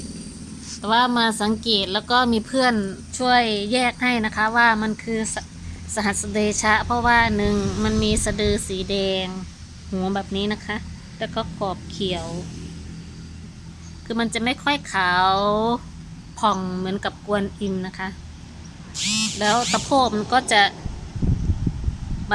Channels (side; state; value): both; identical; correlation 1.00